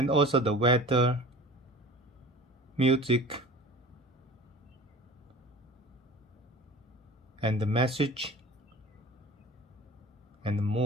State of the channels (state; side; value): normal; both; correlation 0.41